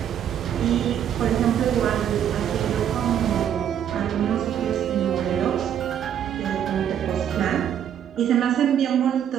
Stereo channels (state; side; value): quieter; left; 9.5 dB